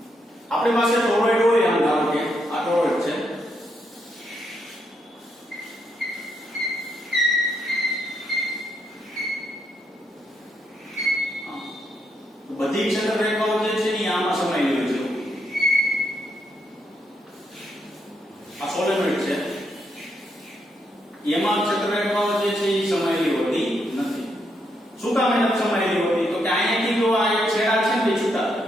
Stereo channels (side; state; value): both; normal; correlation 0.78